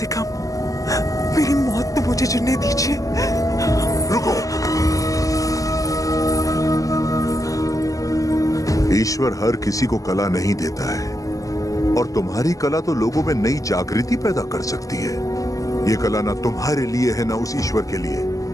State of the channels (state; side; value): late; right; 0.17 ms